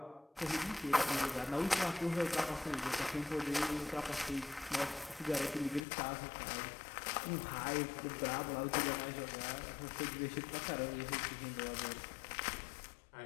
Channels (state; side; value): drops out; right; at 5.8 s